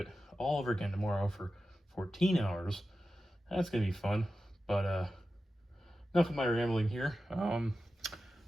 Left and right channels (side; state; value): both; normal; correlation 0.92